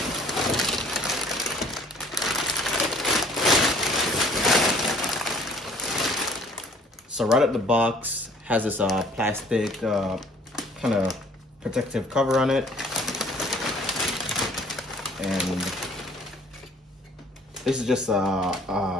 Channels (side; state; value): both; normal; correlation 0.55